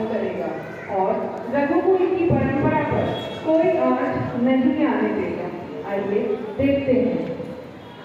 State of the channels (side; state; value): both; identical; correlation 1.00